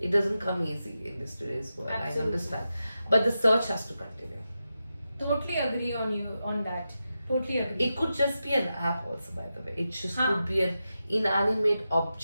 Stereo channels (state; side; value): inverted; both; correlation -0.90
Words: doesn't come easy in this today's world. Absolutely. I understand, but the search has to continue. Totally agree on you on that. Totally agree. It could just be an app also, by the way. It just Huh. could be an inanimate